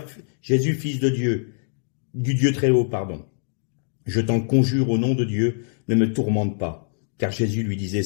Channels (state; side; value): silent; right; digital silence